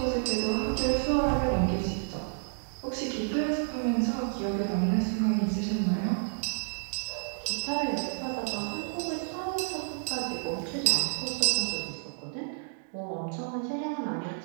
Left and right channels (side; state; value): left; silent; digital silence